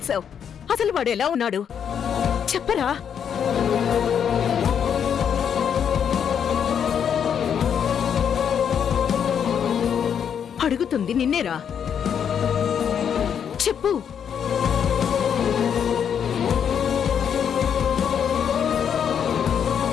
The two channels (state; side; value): quieter; right; 8.0 dB